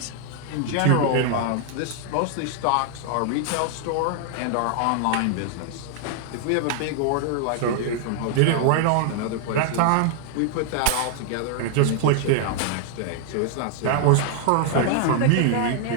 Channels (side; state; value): both; different; correlation 0.00